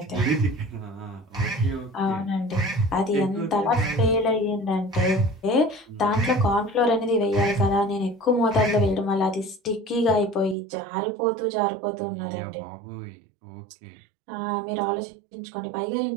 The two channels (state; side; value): drops out; left; at 10.6 s